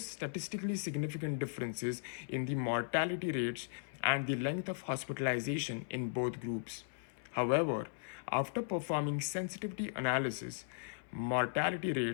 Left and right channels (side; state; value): right; silent; 53 dB below the other